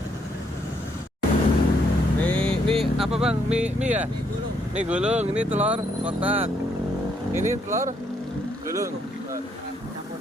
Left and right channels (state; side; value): normal; both; correlation 0.72